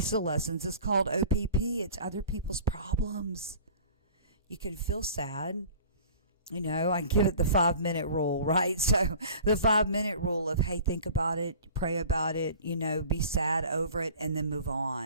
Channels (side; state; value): both; inverted; correlation -0.44